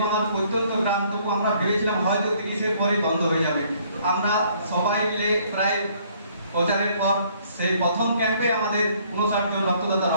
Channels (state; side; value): inverted; both; correlation -0.63